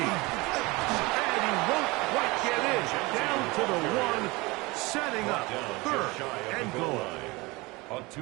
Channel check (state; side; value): quieter; left; 23.7 dB